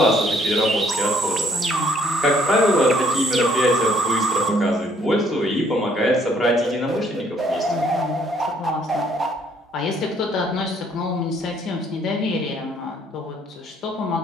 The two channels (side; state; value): both; normal; correlation 0.64